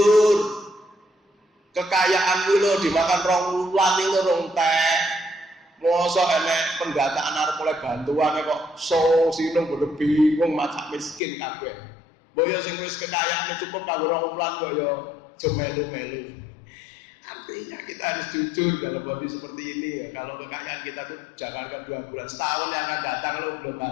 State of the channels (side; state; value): right; drops out; at 11.2 s